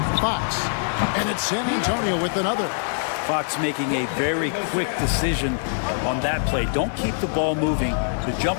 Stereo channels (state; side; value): silent; right; digital silence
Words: Fox. And it's San Antonio with another. Fox making a very quick decision on that play. Don't keep the ball moving. The